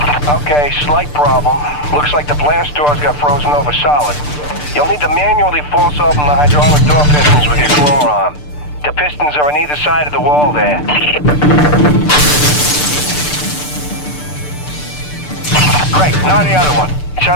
Okay, slight problem. Looks like the blast doors got frozen over solid. You'll need to manually force open the hydraulic door pistons with your claw arm. The pistons are on either side of the wall there. Great, now the other one. It's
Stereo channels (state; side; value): late; right; 6.8 ms